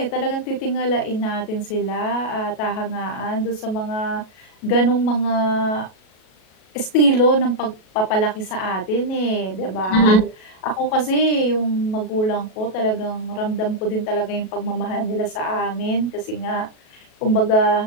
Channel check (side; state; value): right; late; 37 ms